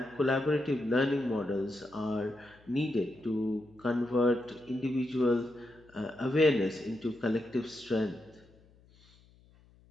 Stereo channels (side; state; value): left; noise; hum, 28 dB below the sound